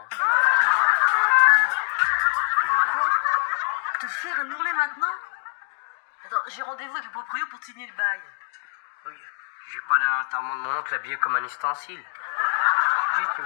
Te faire un ourlet maintenant? Attends, j'ai rendez-vous avec le proprio pour te signer le bail. Oui, j'ai pas l'enterrement de mon oncle habillé comme un ustensile. Juste, tu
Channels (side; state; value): right; silent; digital silence